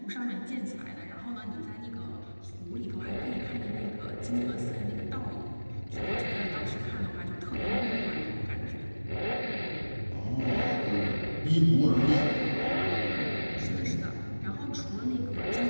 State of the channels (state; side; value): inverted; both; correlation -1.00